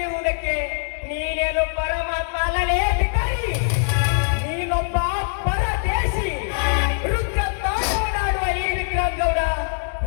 ನೀನೇನು ಪರಮಾತ್ಮ ಅಲ್ಲಲೇ ಬಿಟ್ಟರಿ. ನೀನೊಬ್ಬ ಪರದೇಶಿ ರುದ್ರ ತಾಂಡವನಾಡುವ ಈ ವಿಕ್ರಮಗೌಡ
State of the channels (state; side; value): silent; right; digital silence